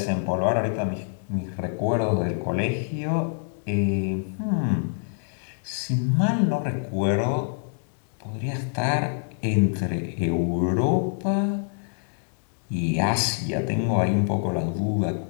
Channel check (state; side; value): silent; right; digital silence